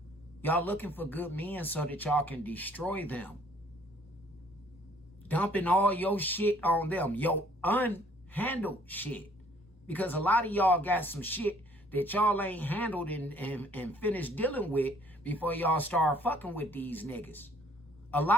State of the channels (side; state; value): both; normal; correlation 0.60